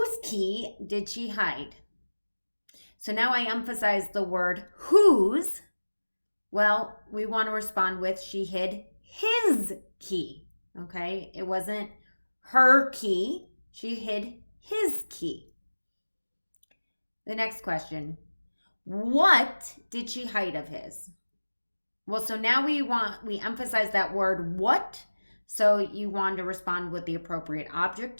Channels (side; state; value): both; inverted; correlation -1.00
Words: key did she hide? So now I emphasize the word whose. Well, we want to respond with she hid his key. Okay, it wasn't her key. She hid his key. The next question, what did she hide of his? Well, so now we emphasize that word what. So you want to respond with the appropriate